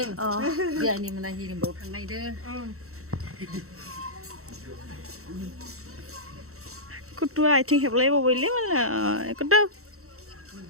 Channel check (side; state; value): left; late; 0.63 ms